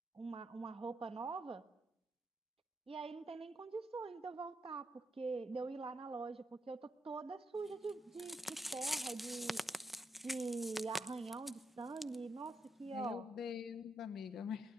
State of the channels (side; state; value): both; normal; correlation 0.82